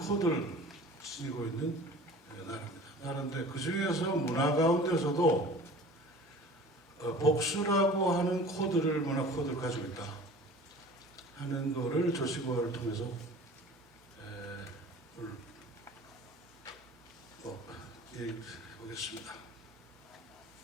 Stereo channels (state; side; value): normal; both; correlation 0.42